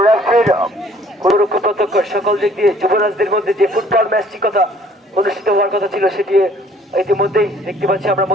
রেফারির কোনরকম প্রত্যক্ষ সকল দিক দিয়ে যুবরাজদের মধ্যে যে ফুটবল ম্যাচটি কথা অনুষ্ঠিত হওয়ার কথা ছিল সেটি ইতিমধ্যেই দেখতে পাচ্ছি আমরা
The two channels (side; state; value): both; normal; correlation 0.57